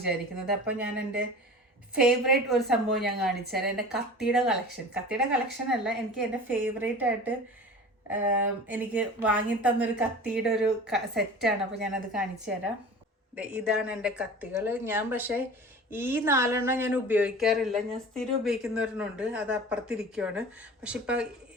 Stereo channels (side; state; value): both; normal; correlation 0.38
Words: അപ്പോൾ ഞാൻ എൻ്റെ ഫേവറേറ്റ് ഒരു സംഭവം ഞാൻ കാണിച്ചു തരാം. എൻ്റെ കത്തിയുടെ കളക്ഷൻ അല്ല, എനിക്ക് എൻ്റെ ഫേവറേറ്റ് ആയിട്ട് എനിക്ക് വാങ്ങിത്തന്നൊരു കത്തിയുടെ ഒരു സെറ്റാണ്. അപ്പോൾ ഞാനത് കാണിച്ചു തരാം. ഇതാണ് എൻ്റെ കത്തികൾ. ഞാൻ പക്ഷേ ഈ 4 ഞാൻ ഉപയോഗിക്കാറില്ല. ഞാൻ സ്ഥിരം ഉപയോഗിക്കുന്നവരുന്നുണ്ട്, അത് അപ്പുറത്തിരിക്കുവാണ്. പക്ഷെ